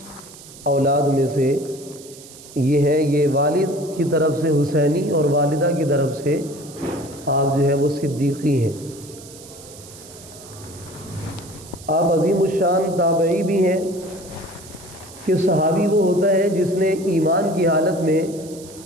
اولاد میں سے یہ ہے۔ یہ والد کی طرف سے حسینی اور والدہ کی طرف سے آپ جو ہے وہ صدیقی ہیں۔ آپ عظیم الشان تابعی بھی ہیں کہ صحابی وہ ہوتا ہے جس نے ایمان کی حالت میں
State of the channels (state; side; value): noise; right; hiss, 18 dB below the sound